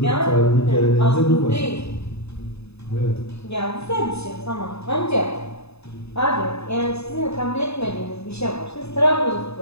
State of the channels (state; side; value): late; right; 0.79 ms